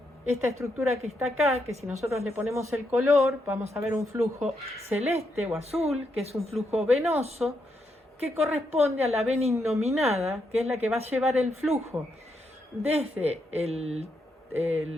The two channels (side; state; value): both; normal; correlation 0.80